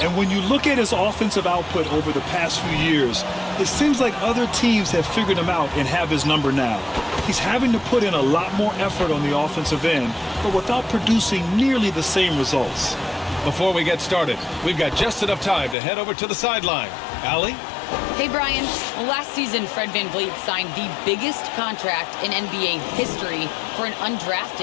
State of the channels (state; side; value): drops out; right; at 15.8 s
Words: And when you look at his offensive output over the past few years, it seems like other teams have figured him out and have his number now. He's having to put in a lot more effort on the offensive end, but without producing nearly the same results. Before we get started, we've got just enough time to head over to the sideline. Allie? Hey, Brian. Well, last season, Fred VanVleet signed the biggest contract in NBA history for an